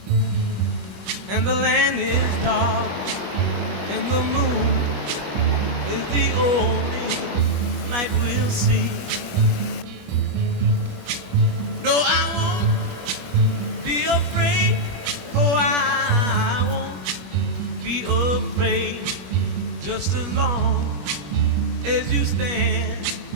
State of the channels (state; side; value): late; left; 21 ms